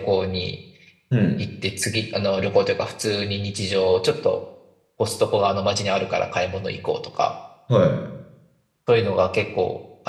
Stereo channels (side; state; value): both; identical; correlation 1.00